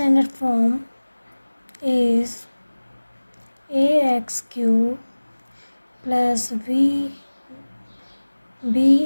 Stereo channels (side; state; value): both; inverted; correlation -1.00